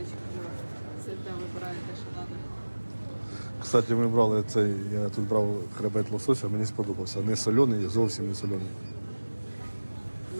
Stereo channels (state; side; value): inverted; both; correlation -1.00